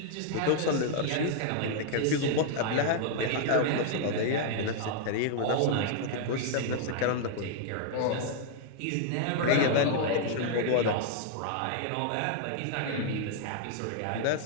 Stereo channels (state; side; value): different; both; correlation 0.00